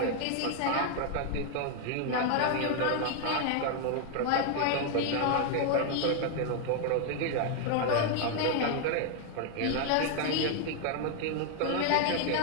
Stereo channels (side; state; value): both; different; correlation 0.00